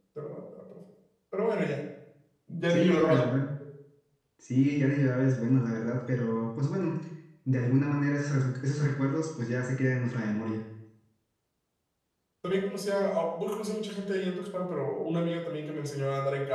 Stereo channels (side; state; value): both; identical; correlation 1.00